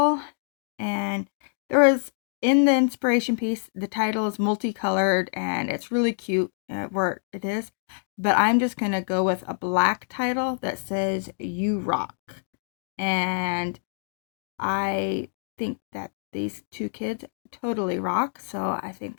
And there was, in the inspiration piece, the title is multicolored and it's really cute where it is. But I'm just going to go with a black title that says You Rock. And I think that these 2 kids totally rock, so I think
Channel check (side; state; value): right; silent; digital silence